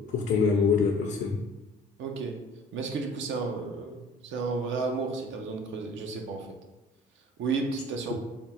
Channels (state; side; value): normal; both; correlation 0.49